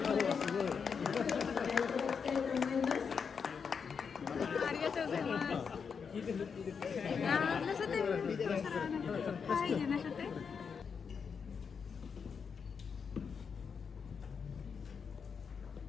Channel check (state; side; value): quieter; right; 6.2 dB